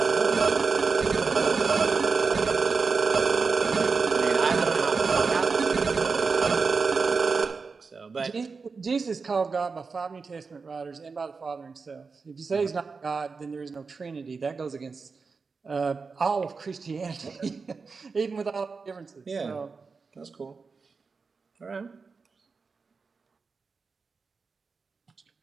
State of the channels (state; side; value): quieter; left; 4.7 dB